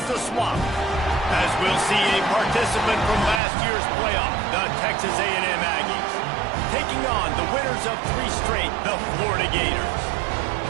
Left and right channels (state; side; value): drops out; left; at 3.4 s